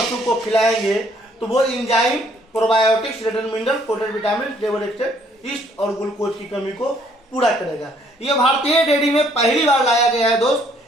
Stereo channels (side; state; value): both; normal; correlation 0.65